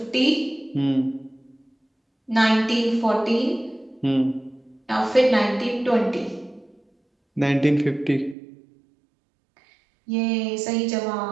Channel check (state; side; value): drops out; left; at 8.3 s